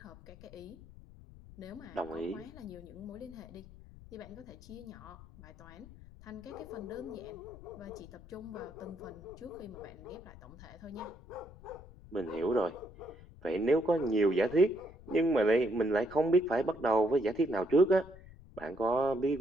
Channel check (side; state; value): left; noise; rumble, 19 dB below the sound